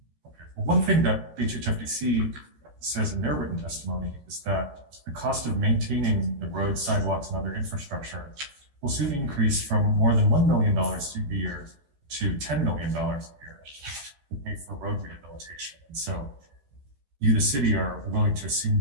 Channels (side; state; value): left; late; 14 ms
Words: Well, one thing that HHFDC says in their written testimony is that the cost of maintaining the roads, sidewalks, and other infrastructure will soon increase from more than $1 million a year to $10 million a year to pay for road rehabilitation. And so you, the city, are willing to assume